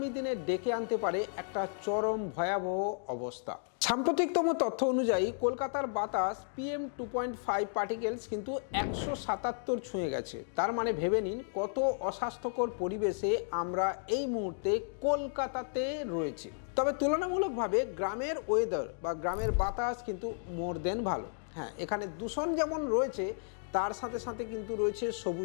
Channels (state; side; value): silent; right; digital silence